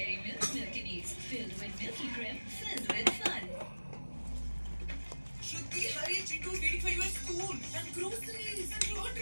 Milk Milky Needs, filled with milky cream, filled with fun. Shruti, hurry, Chitu, waiting for you at school. And groceries and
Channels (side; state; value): both; inverted; correlation -1.00